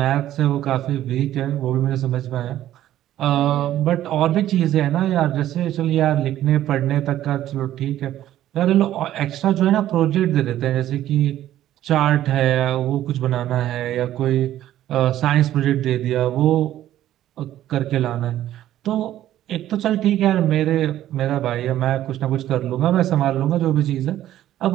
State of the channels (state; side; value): quieter; left; 12.8 dB